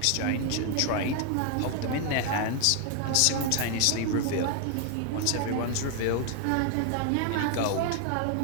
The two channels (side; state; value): both; different; correlation 0.00